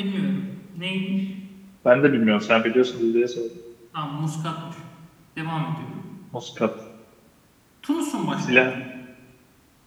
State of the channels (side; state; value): both; identical; correlation 1.00